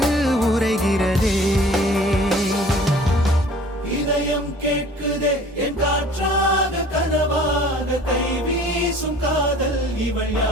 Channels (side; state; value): both; normal; correlation 0.49